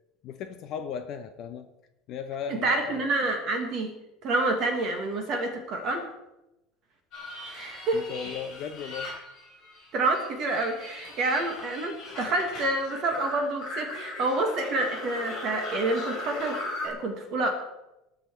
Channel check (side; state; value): both; normal; correlation 0.37